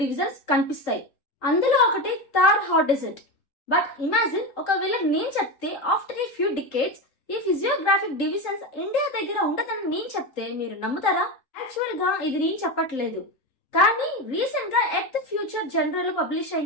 డివిజన్స్ కనిపిస్తాయి. అందులో ఒకటి Thar hot desert. But imagine ఒకవేళ నేను చెప్తే ఆఫ్టర్ ఏ ఫ్యూ డికేడ్స్ ఈ ఫిజియోగ్రాఫిక్ డివిజన్స్ ఇండియా దగ్గర ఉండదని నేను చెప్తే మీరు నమ్ముతారా? యాక్చువల్ గా ఇది నేను చెప్పట్లేదు, కానీ రీసెంట్ గా ఎర్త్ ఫ్యూచర్ జనరల్ లో పబ్లిష్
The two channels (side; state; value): right; late; 3.8 ms